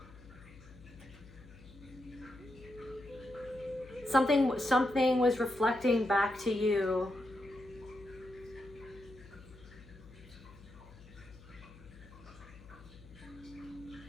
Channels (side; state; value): left; noise; hum, 20 dB below the sound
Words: something was reflecting back to you.